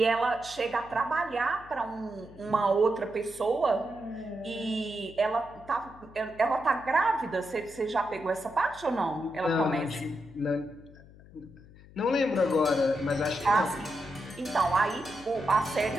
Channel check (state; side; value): noise; left; hum, 21 dB below the sound